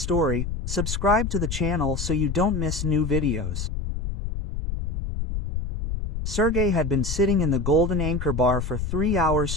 subscribe to the channel so you don't miss new videos. Sergei had been sitting in the Golden Anchor bar for 3 hours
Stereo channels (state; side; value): noise; left; rumble, 4 dB below the sound